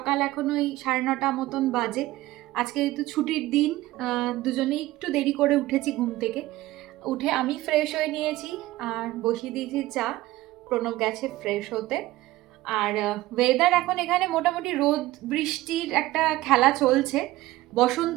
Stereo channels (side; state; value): left; quieter; 17.2 dB